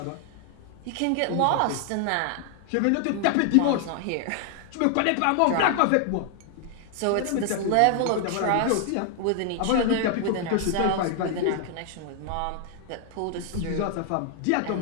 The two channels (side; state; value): both; different; correlation 0.00